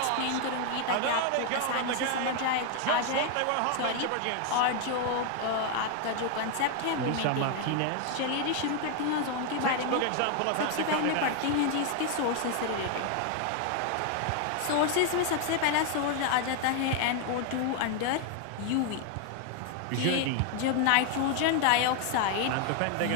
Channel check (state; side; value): different; both; correlation 0.01